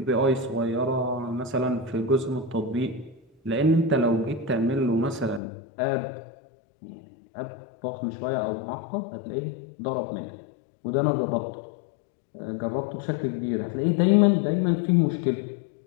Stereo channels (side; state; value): right; drops out; at 5.4 s